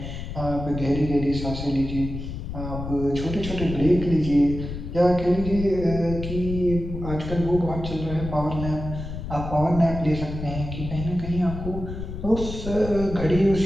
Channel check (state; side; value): noise; left; rumble, 7 dB below the sound